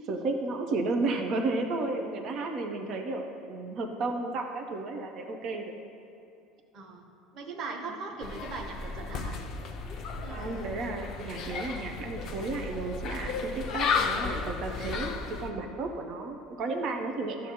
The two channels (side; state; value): both; normal; correlation 0.50